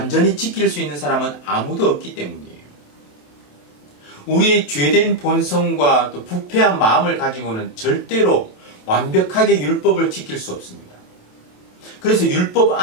지킬 수 있는 사람은 아무도 없기 때문이에요. 우리의 죄된 본성과 또 부패한 마음을 가지고는 절대로 완벽하게 율법을 지킬 수 없습니다. 그래서 율법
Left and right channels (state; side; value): late; right; 27 ms